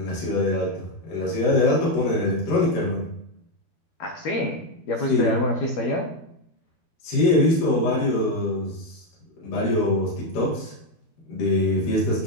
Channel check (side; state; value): right; late; 12 ms